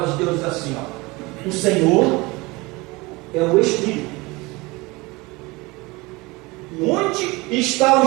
de Deus diz assim, ó: o Senhor é o Espírito. Onde está o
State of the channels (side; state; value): left; quieter; 23.7 dB